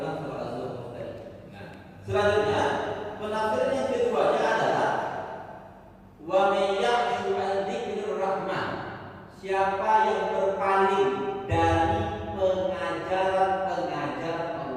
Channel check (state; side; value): identical; both; correlation 1.00